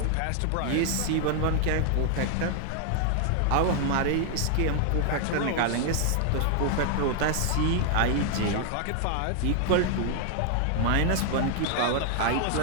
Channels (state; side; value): different; both; correlation 0.00